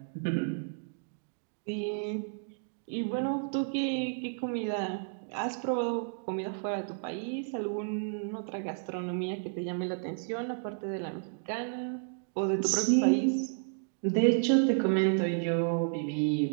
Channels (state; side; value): silent; left; digital silence